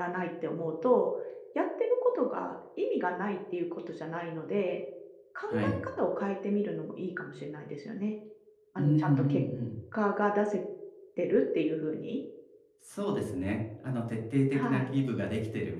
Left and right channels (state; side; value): identical; both; correlation 1.00